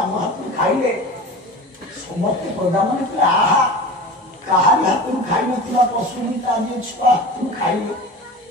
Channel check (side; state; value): both; normal; correlation 0.33